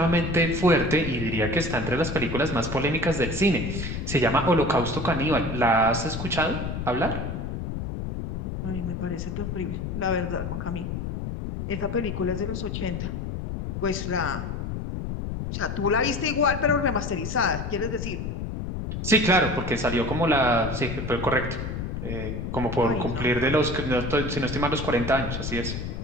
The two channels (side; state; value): left; noise; rumble, 4 dB below the sound